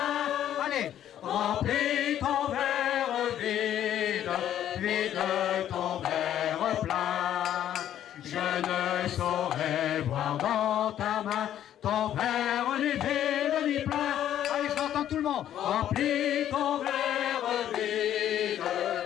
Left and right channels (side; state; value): right; quieter; 11.1 dB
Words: Allez, remplis ton verre vide, vide ton verre plein. Je ne saurais voir dans ta main ton verre ni vide ni plein. Allez, je l'entends tout le monde. Remplis ton verre vide,